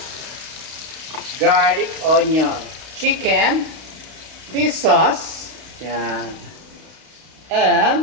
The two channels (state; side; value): late; left; 31 ms